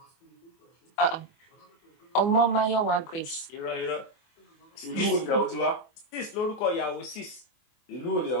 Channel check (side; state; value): right; late; 24 ms